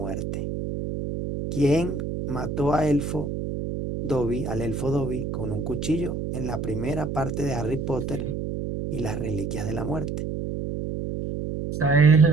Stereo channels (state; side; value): noise; right; hum, 4 dB below the sound